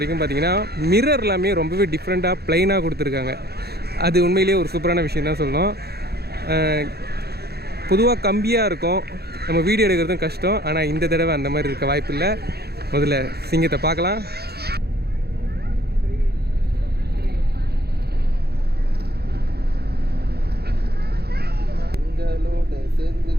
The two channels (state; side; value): late; left; 0.46 ms